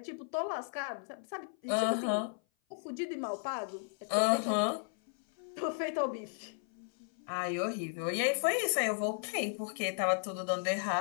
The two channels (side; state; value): right; silent; 55 dB below the other